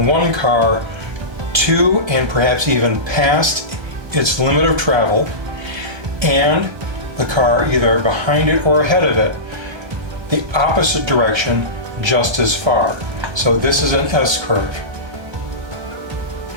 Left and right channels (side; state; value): left; late; 1.2 ms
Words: one car to and perhaps even past its limit of travel, and the car either behind it or ahead of it the opposite direction just as far. So this is an S-curve.